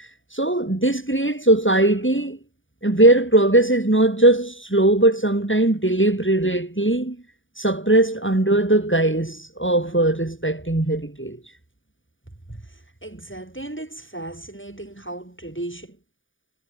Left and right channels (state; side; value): late; right; 0.57 ms